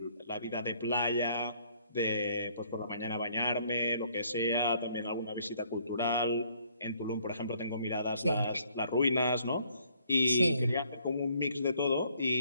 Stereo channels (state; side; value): inverted; both; correlation -0.64